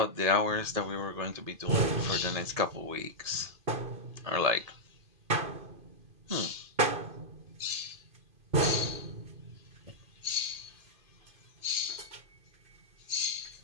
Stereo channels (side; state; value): left; late; 2.5 ms